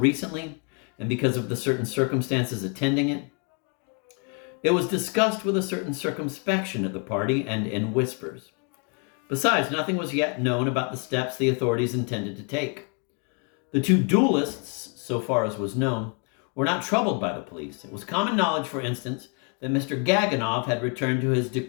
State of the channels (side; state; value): right; quieter; 37.6 dB